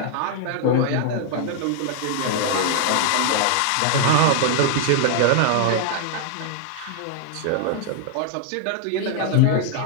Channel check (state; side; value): different; both; correlation 0.00